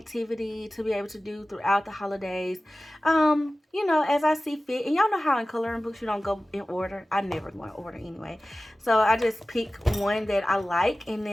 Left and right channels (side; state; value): both; normal; correlation 0.97